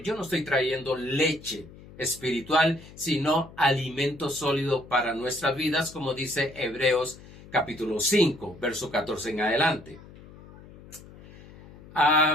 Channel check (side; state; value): left; noise; hum, 20 dB below the sound